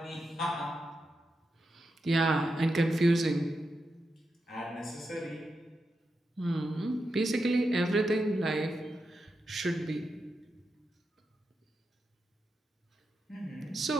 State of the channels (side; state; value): both; normal; correlation 0.87